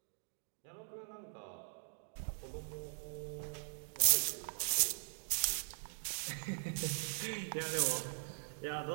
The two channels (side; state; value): left; silent; digital silence